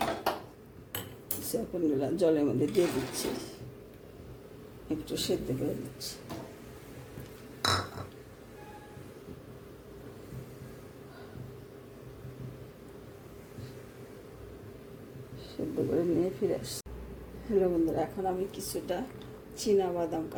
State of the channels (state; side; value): identical; both; correlation 1.00